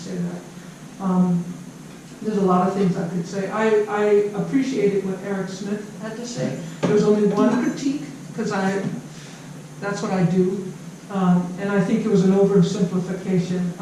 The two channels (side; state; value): both; identical; correlation 1.00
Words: that. There's a lot of things I could say. I appreciated what Eric Smith had to say. There was only one critique, because that's what I do. And I think it was an oversimplification